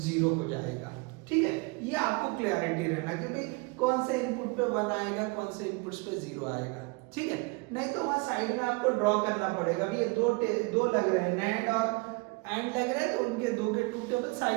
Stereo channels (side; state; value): left; quieter; 28.1 dB